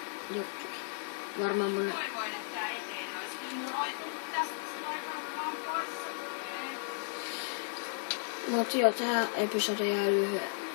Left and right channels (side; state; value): right; silent; 55 dB below the other